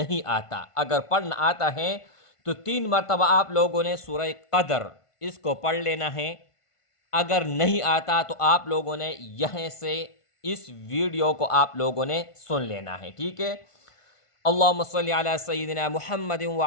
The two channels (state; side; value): late; right; 1.5 ms